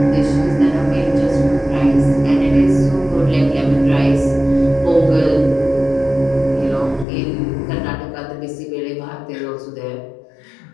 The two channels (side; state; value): right; drops out; at 7.1 s